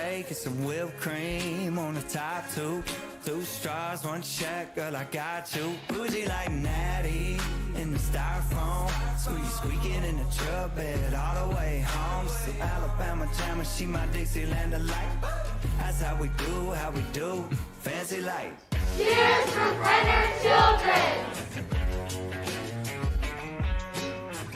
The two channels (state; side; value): identical; both; correlation 1.00